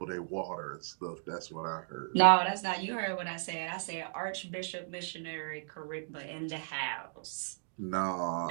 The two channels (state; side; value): silent; left; digital silence